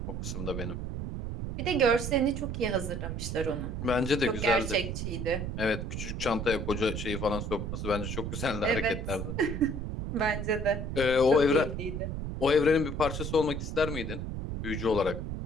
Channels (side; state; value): right; noise; rumble, 4 dB below the sound